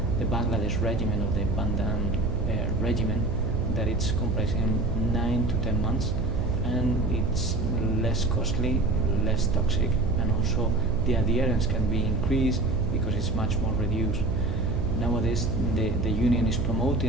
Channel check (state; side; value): noise; right; hum, 4 dB below the sound